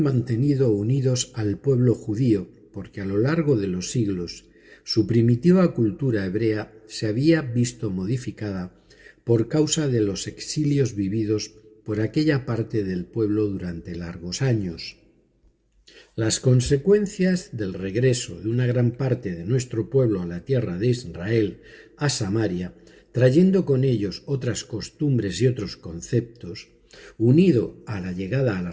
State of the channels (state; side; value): identical; both; correlation 1.00